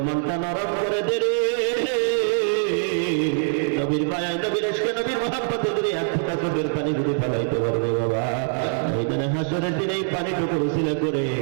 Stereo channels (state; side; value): silent; left; 60 dB below the other